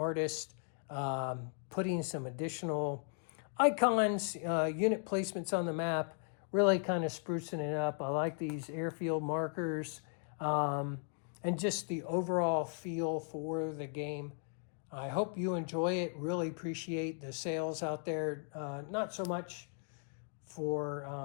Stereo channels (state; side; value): silent; right; 53 dB below the other